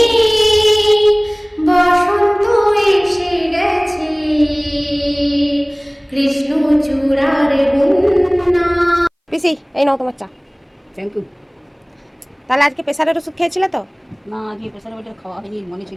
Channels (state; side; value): identical; both; correlation 1.00